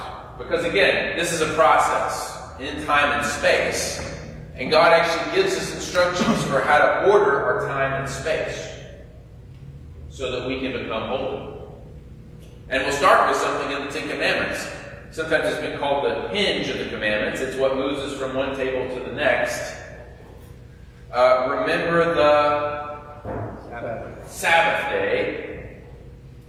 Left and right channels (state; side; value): identical; both; correlation 1.00